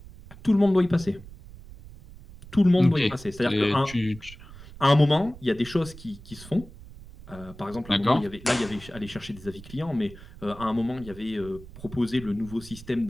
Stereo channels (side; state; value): right; noise; rumble, 18 dB below the sound